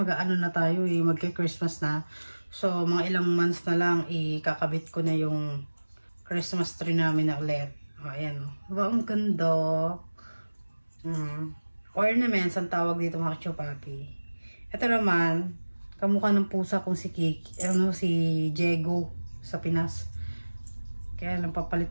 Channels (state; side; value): inverted; both; correlation -1.00